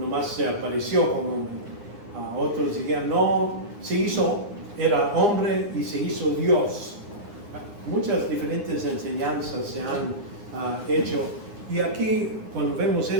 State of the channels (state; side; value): late; left; 9.7 ms